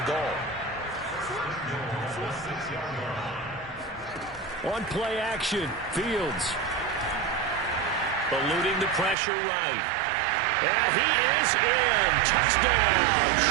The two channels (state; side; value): drops out; left; at 9.2 s